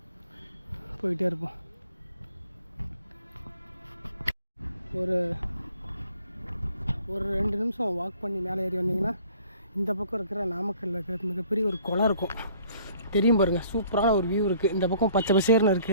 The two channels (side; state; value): both; inverted; correlation -0.56